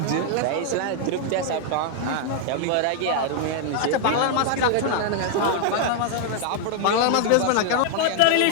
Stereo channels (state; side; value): different; both; correlation 0.00